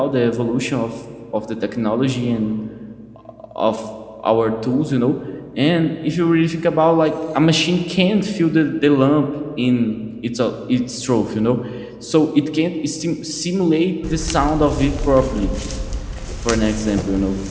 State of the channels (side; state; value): both; identical; correlation 1.00